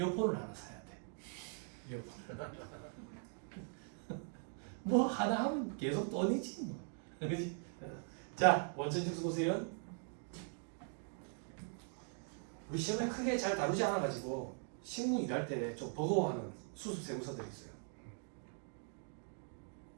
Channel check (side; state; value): left; silent; 50 dB below the other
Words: 하나 사야 돼. 이어폰을. 뭐 하나 하면 계속 돈이지 뭐. 그렇지? 자, 원천징수 보세요. 우리 시험에 크게 잘 다루지 않아가지고 실무 일할 때 좀 버거워하는 수습 세무서들이 있어요.